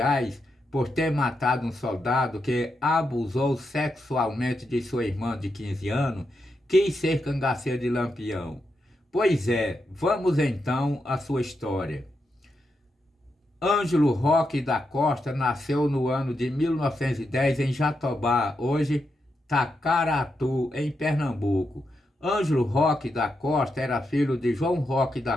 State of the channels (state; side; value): normal; both; correlation 0.85